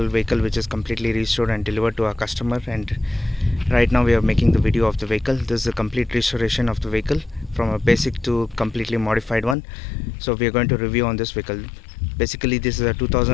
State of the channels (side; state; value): right; drops out; at 9.6 s